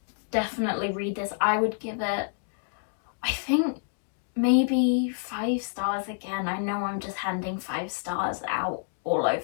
definitely read this. I would give it, I think, maybe 5 stars again. I know I'm just handing 5 stars out all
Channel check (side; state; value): right; silent; digital silence